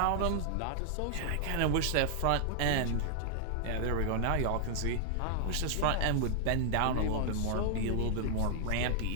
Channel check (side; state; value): both; different; correlation -0.01